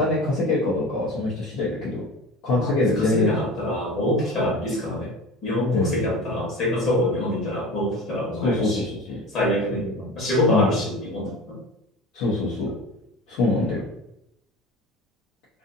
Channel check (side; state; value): both; normal; correlation 0.35